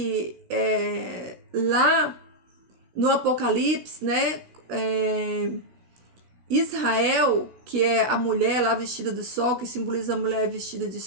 lá no Apocalipse, né, Israel, que é a mulher lá vestida de sol, que simboliza a mulher vestida de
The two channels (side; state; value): left; late; 16 ms